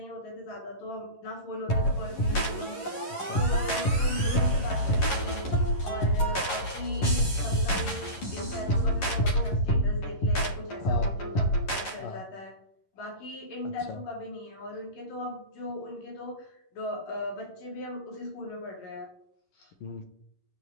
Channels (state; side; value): late; right; 11 ms